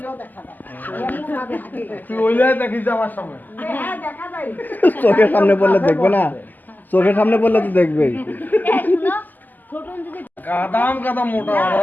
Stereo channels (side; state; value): right; late; 0.085 ms